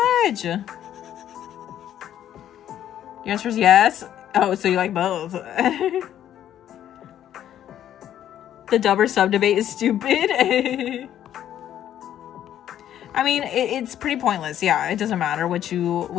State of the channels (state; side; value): quieter; right; 11.0 dB